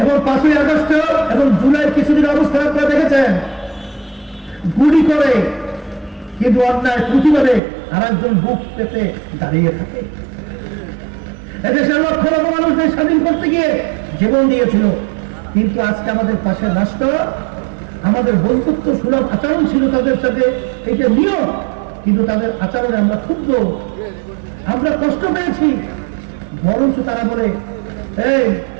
এবং 5ই আগস্ট এবং জুলাই কিছুদিন অবস্থা আপনারা দেখেছেন, গুলি করে কিন্তু অন্যায় প্রতিবাদে আর একজন বুক পেতে দাঁড়িয়ে থাকে। এদেশের লক্ষ লক্ষ মানুষদের স্বাধীন করতে গিয়ে জীবন দিয়েছিল, কিন্তু আজকে আমাদের পাশে রাষ্ট্র, আমাদের বন্ধুত্ব সুলভ আচরণ ছিল তাদের সাথে, এটা নিয়ম, কিন্তু তাদের আচরণে আমরা ক্ষুব্ধ, আমরা কষ্ট পেয়েছি। বরঞ্চ তারা বলে এই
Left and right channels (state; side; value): drops out; left; at 7.6 s